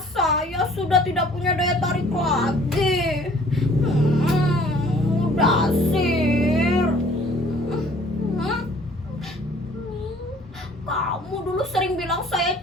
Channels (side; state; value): both; normal; correlation 0.55